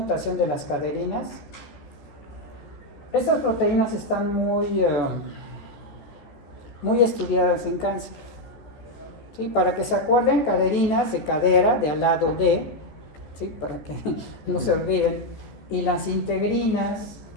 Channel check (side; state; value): right; late; 14 ms